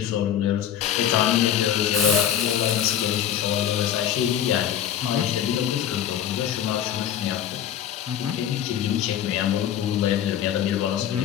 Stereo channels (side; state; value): right; quieter; 10.1 dB